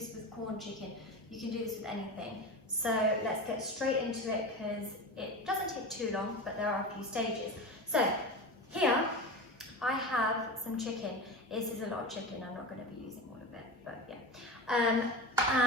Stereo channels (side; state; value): both; normal; correlation 0.27